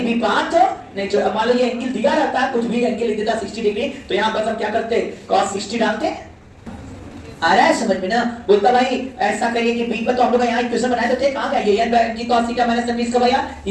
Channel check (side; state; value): both; identical; correlation 1.00